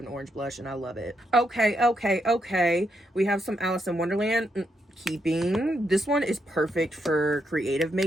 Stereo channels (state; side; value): normal; both; correlation 0.80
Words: orange blush, and I love it. Okay. We have some Alice in Wonderland. Keeping. This one is perfect for creative